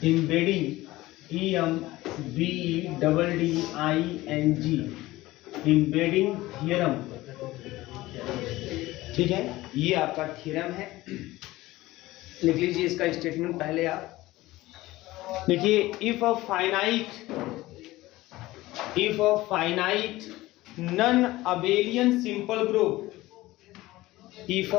एम्बेडिंग EMBEDDING एम्बेडिंग थ्योरम। ठीक है, ये आपका थ्योरम है। लिख लीजिए इसका स्टेटमेंट पहले आप देखिए। If a finite non abelian simple group, if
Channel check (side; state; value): right; quieter; 18.0 dB